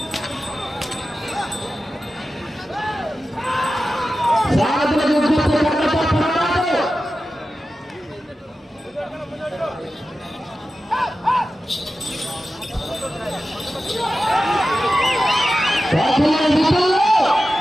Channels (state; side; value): normal; both; correlation 0.93